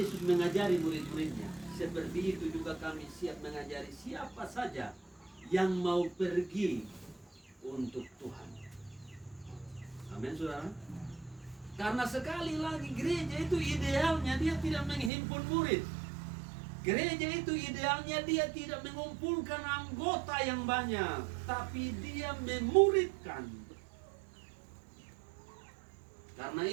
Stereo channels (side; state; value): left; drops out; at 15.1 s